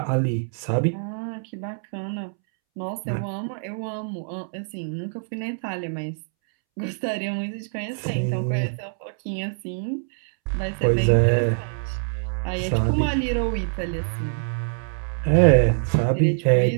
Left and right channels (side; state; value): left; silent; 62 dB below the other